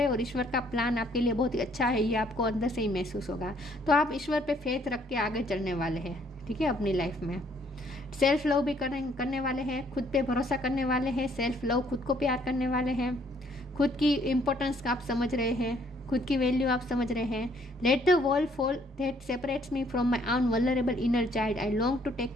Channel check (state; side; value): normal; both; correlation 0.65